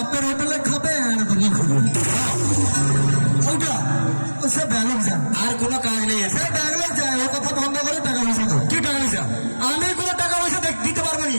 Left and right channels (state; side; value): inverted; both; correlation -1.00